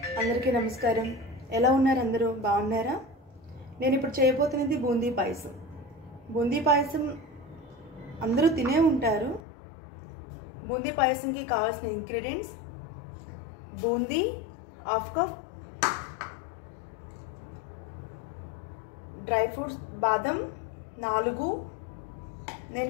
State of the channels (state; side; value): drops out; right; at 9.4 s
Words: నమస్కారం. ఎలా ఉన్నారు? అందరూ బాగున్నారా? నేను ఇప్పుడు చేయబోతున్నది బూందీ పాయసం. బూందీ పాయసం అందరూ తినే ఉంటారు. బూందీ పాయసంకి కావాల్సిన ingredients: boondi half cup, dry fruits బాదం 4,